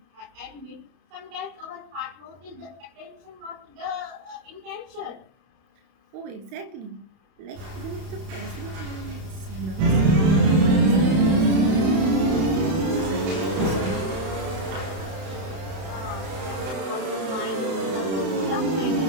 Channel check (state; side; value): late; left; 31 ms